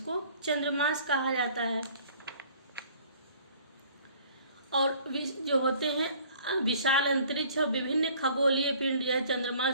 चंद्रमास कहा जाता है। और जो होते हैं विशाल अंतरिक्ष और विभिन्न खगोलीय पिंड या चंद्रमा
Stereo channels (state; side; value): inverted; both; correlation -0.54